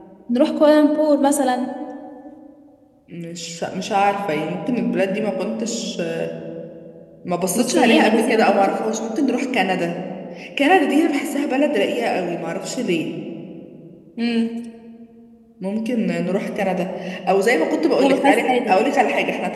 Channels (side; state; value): both; identical; correlation 1.00